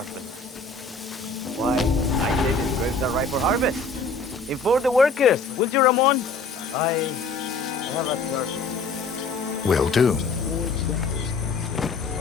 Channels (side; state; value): right; quieter; 3.9 dB